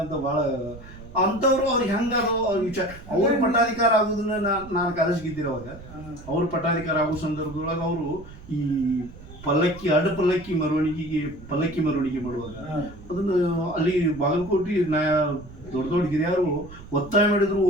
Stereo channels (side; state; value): right; noise; rumble, 17 dB below the sound